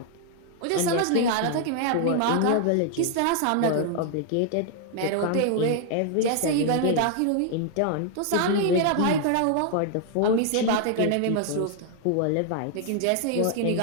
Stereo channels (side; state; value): both; different; correlation 0.00